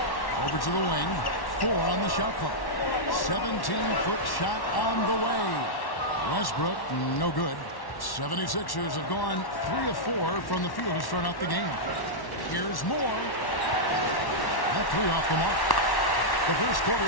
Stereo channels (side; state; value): right; late; 1.1 ms